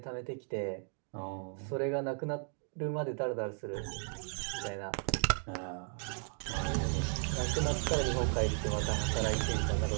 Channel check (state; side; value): silent; left; 54 dB below the other